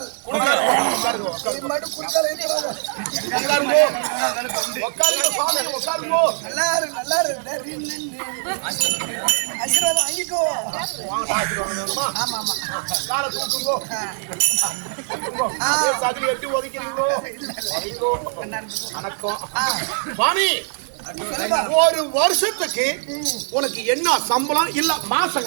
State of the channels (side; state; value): left; silent; 64 dB below the other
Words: இது மட்டும் குறுக்கால் இருக்கிறாங்க. நல்லா இருக்கு, நல்லா இருக்கு. ஆசீர்வாதம் வாங்கிக்கோ. ஆமா ஆமா. காலை தூக்குங்கோ. சதில் எட்டு ஒதுக்கிறீங்களோ? வணக்கம் சுவாமி. ஒரு வருஷத்துக்கு உனக்கு என்ன சம்பளம்? இல்ல மாசம்